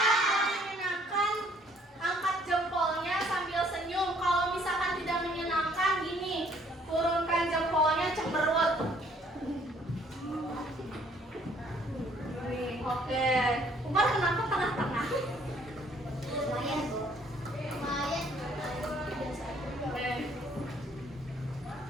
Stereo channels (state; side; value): normal; both; correlation 0.62